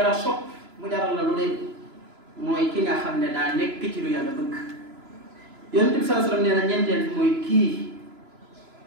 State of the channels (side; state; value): left; late; 3.0 ms